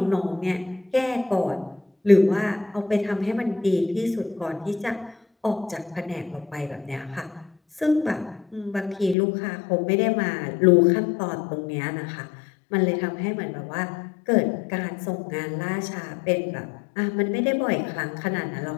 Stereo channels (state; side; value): drops out; right; at 9.2 s